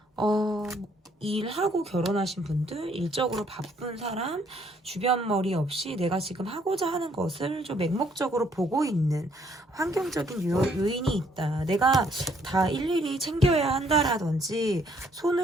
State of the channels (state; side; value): normal; both; correlation 0.66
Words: 일하고 결혼하신 분들, 일적으로 바쁜 사람, 주변 머리 없이 내가 지금 하고자 하는 것을 좀 맹목적으로 보고 있는 환경적인 요인이 있다. 내가 다 일일이 챙겨야 한다라든지